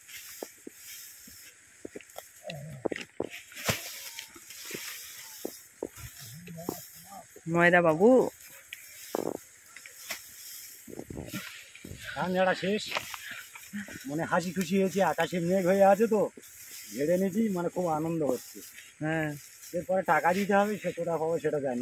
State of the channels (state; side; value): identical; both; correlation 1.00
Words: ময়দা বাবু ধান ঝাড়া শেষ, মানে হাসি খুশি হয়েছে, আকাশে মেঘ হয়ে আছে তো ঝেড়ে নিয়েছি, মানে খুব আনন্দ হচ্ছে। হ্যাঁ, এরপরে টাকা দিতে হবে, সে কোথা পাবো সেটা